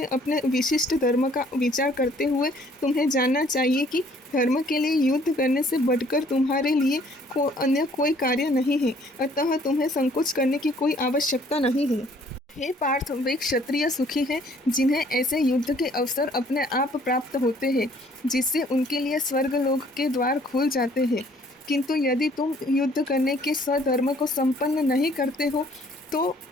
अपने विशिष्ट धर्म का विचार करते हुए तुम्हें जानना चाहिए कि धर्म के लिए युद्ध करने से बढ़कर तुम्हारे लिए अन्य कोई कार्य नहीं है, अतः तुम्हें संकोच करने की कोई आवश्यकता नहीं है। हे पार्थ, वे क्षत्रिय सुखी हैं जिन्हें ऐसे युद्ध के अवसर अपने आप प्राप्त होते हैं, जिससे उनके लिए स्वर्गलोक के द्वार खुल जाते हैं। किंतु यदि तुम युद्ध करने के स्वधर्म को संपन्न नहीं करते हो, तो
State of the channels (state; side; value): normal; both; correlation 0.60